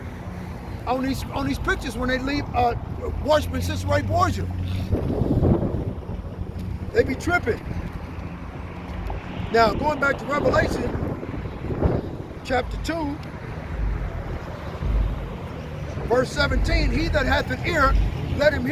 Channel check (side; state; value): both; identical; correlation 1.00